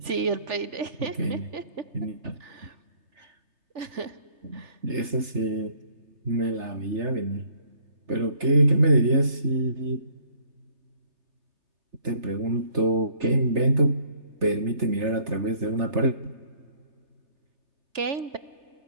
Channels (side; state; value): left; late; 3.3 ms